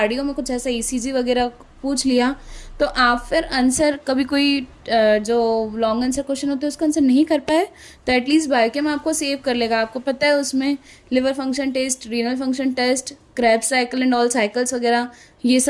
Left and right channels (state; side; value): identical; both; correlation 1.00